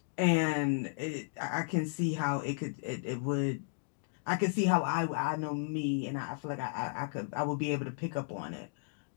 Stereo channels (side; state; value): right; silent; digital silence